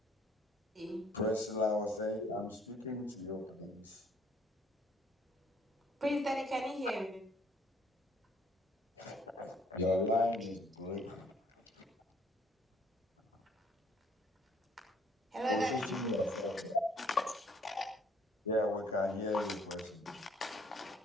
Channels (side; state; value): both; normal; correlation 0.63